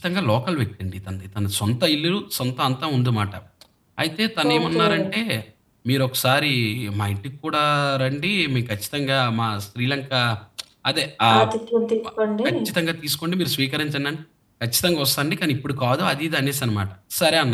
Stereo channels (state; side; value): identical; both; correlation 1.00